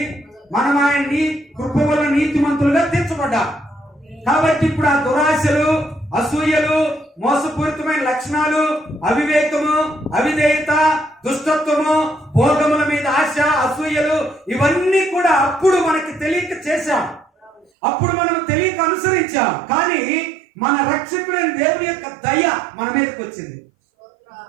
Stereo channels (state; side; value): drops out; left; at 17.7 s